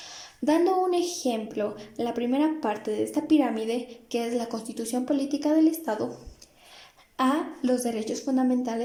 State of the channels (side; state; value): both; identical; correlation 1.00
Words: Dando un ejemplo, la primera parte de esta pirámide, que es la Constitución Política del Estado, a los derechos